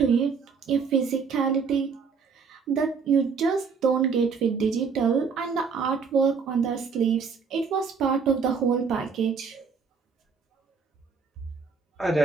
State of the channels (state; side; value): quieter; left; 5.6 dB